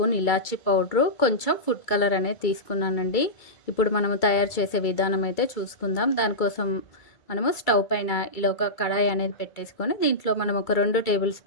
ఇలాచీ పౌడరు, కొంచెం ఫుడ్ కలర్ అనేది తీసుకున్నానండి. ఇప్పుడు మనము తయారు చేసే విధానం అయితే చూసుకుందాం. దానికోసం మనము స్టవ్ పైన ఇలా ఒక కడాయి అనేది పెట్టేసుకొని దీంట్లో మనం ఒక 2 టేబుల్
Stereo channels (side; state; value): right; late; 2.3 ms